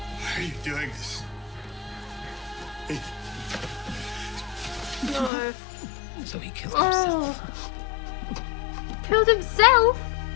Why are you doing this? No. So he killed himself. Oh. Killed himself?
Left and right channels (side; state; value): right; drops out; at 5.3 s